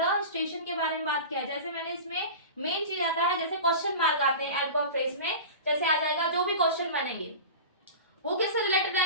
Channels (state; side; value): inverted; both; correlation -0.32